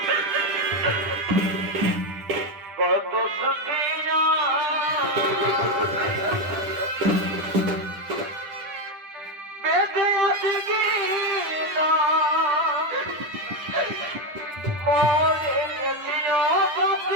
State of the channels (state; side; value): late; left; 10 ms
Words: কত সুখিয়া বেঁধে আছে কি না, মরে গেছিও